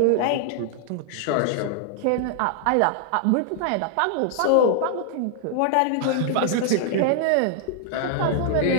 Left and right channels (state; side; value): different; both; correlation -0.01